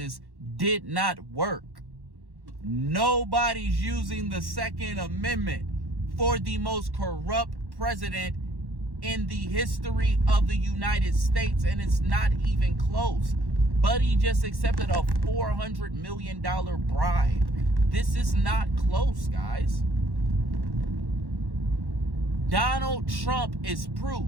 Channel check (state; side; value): late; left; 1.1 ms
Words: did not work. Nobody's using the Second Amendment for the most corrupt president in the history of the United States, and it's not even close. Buddy just accepted a $400 million bribe. This is not close, guys. Donald Trump is